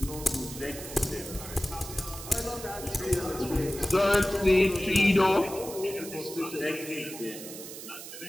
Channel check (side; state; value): right; noise; hiss, 11 dB below the sound